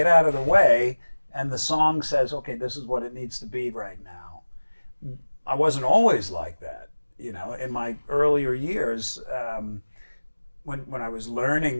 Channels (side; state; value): both; inverted; correlation -1.00